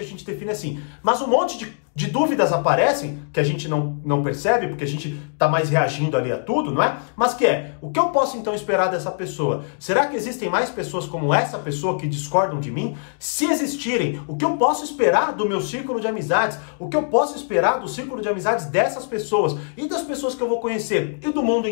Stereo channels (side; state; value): right; silent; digital silence